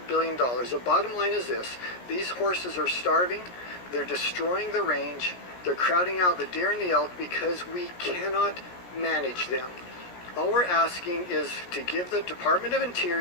billion? The bottom line is this: these horses are starving, they're destroying the range, they're crowding out the deer and the elk because we cannot manage them. All we're asking is to give the Department of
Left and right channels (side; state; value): right; late; 17 ms